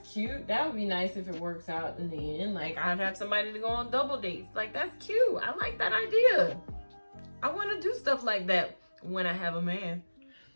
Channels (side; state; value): both; inverted; correlation -1.00